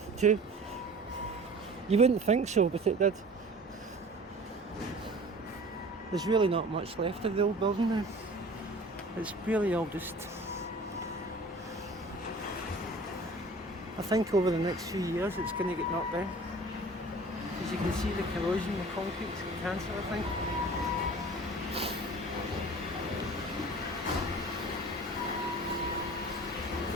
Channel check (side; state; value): both; normal; correlation 0.43